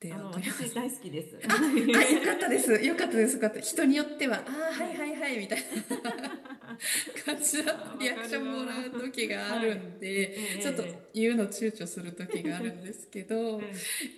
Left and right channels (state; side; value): identical; both; correlation 1.00